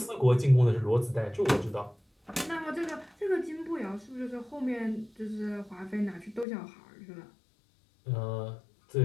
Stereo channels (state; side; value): drops out; right; at 6.5 s